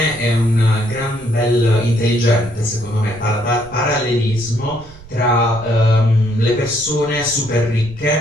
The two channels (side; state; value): right; noise; rumble, 20 dB below the sound